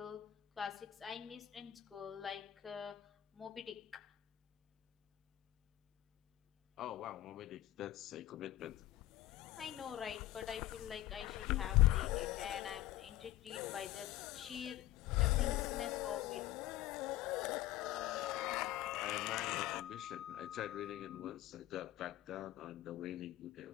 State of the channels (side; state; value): right; quieter; 14.9 dB